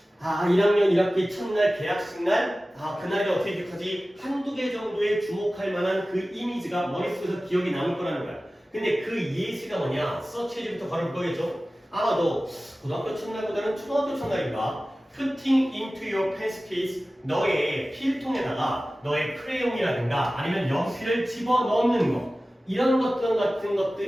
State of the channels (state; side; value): normal; both; correlation 0.96